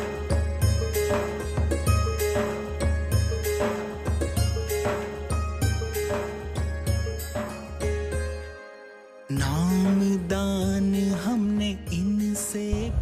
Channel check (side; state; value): both; identical; correlation 1.00